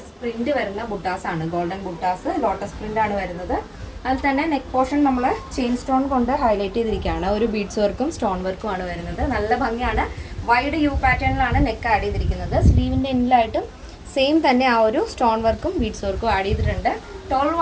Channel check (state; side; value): identical; both; correlation 1.00